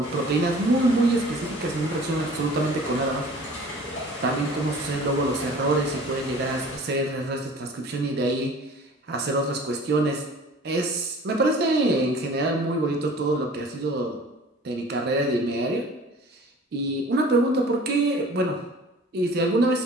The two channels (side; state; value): both; normal; correlation 0.46